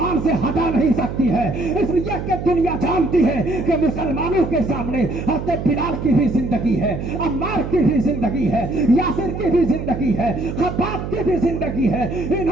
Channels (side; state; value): right; noise; hum, 6 dB below the sound